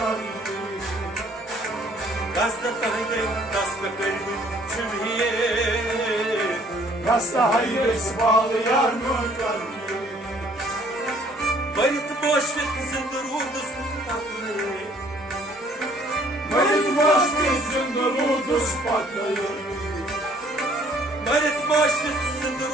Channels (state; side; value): normal; both; correlation 0.60